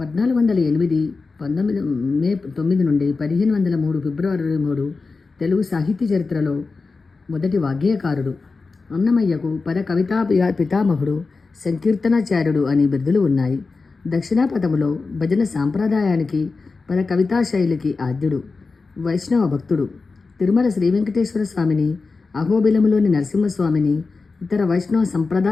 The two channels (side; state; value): right; quieter; 4.1 dB